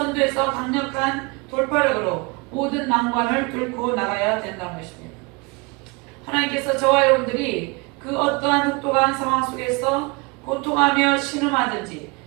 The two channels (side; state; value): left; quieter; 28.1 dB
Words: 강력한 돌파력으로 모든 난관을 뚫고 나가야 된다는 것입니다. 하나님께서 저와 여러분들이 그 어떠한 혹독한 상황 속에서 고통하며 신음하든지